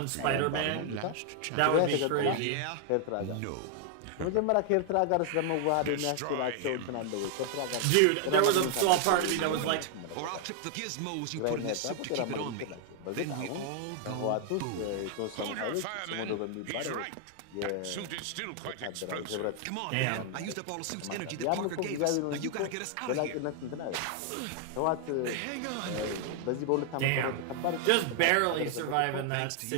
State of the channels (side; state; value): both; different; correlation 0.00